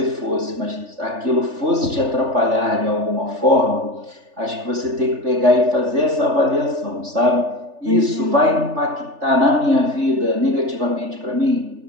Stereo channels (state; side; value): late; left; 3.4 ms